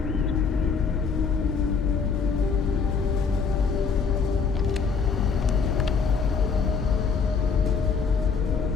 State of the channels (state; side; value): quieter; right; 5.5 dB